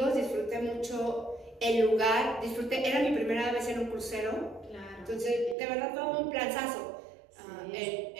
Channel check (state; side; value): drops out; left; at 5.6 s